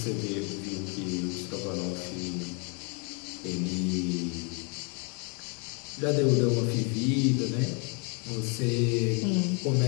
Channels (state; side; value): quieter; right; 35.9 dB